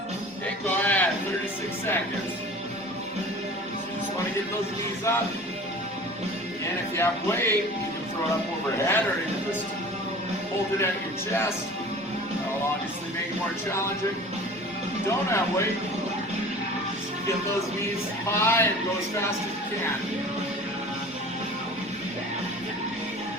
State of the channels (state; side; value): normal; both; correlation 0.42